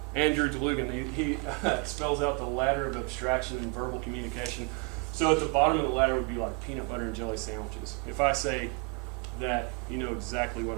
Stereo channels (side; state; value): left; quieter; 29.0 dB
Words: Andrew DeLugan. He spells out the ladder of abstraction and verbal communication. So at the bottom of the ladder would be like peanut butter and jelly sandwiches. If I say that, you know exactly what